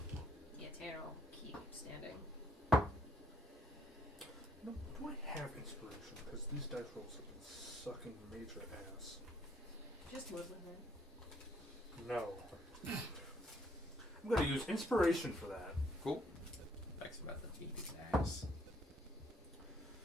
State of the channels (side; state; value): both; normal; correlation 0.67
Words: Yeah, Tanner will keep standing. No, do I have inspiration? Because these dice rolls have been sucking major ass. Just live with it. No. I'm going to use inspiration for that. Cool. Thanks about the beat his ass.